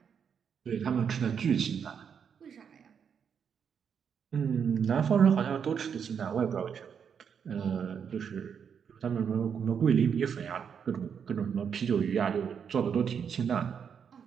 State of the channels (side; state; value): left; quieter; 7.2 dB